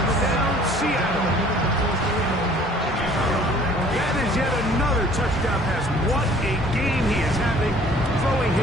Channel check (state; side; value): normal; both; correlation 0.53